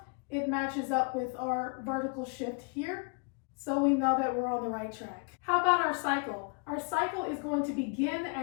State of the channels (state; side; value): quieter; right; 35.8 dB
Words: it matches up with our vertical shift here. So we know that we're on the right track. How about our cycle? Our cycle is going to begin